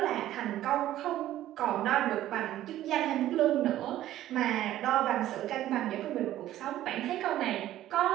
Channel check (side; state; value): left; quieter; 13.5 dB